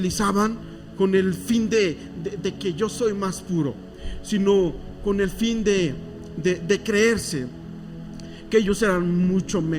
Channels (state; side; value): identical; both; correlation 1.00